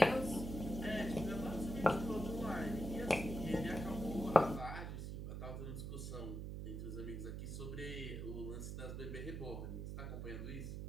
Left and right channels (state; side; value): noise; right; hum, 5 dB below the sound